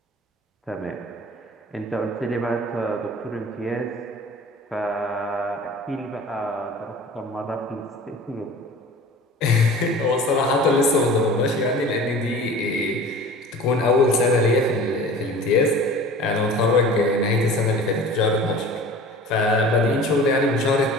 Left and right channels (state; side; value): normal; both; correlation 0.41